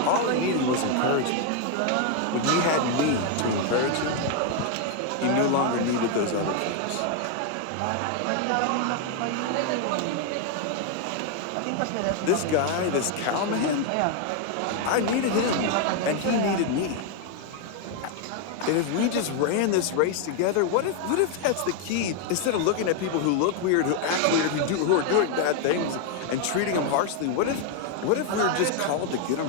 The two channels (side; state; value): both; different; correlation 0.01